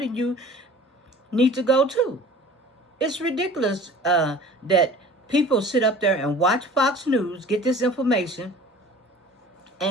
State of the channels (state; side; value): normal; both; correlation 0.45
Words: you need to go too. It's ridiculous that people sit up there and watch Fox News, get this information,